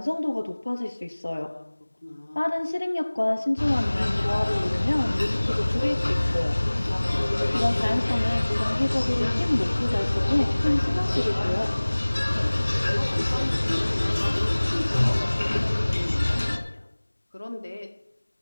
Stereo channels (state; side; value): inverted; both; correlation -1.00